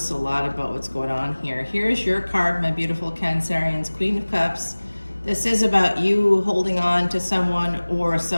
a lot about what's going on here. Here's your card, my beautiful Cancerians, Queen of Cups. This is about you holding on to someone or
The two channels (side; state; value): both; inverted; correlation -1.00